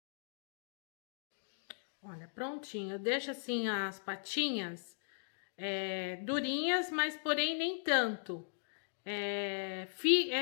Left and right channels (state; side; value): silent; right; digital silence